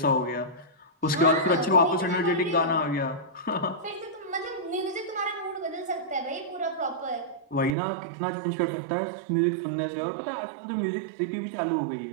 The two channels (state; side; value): drops out; left; at 7.8 s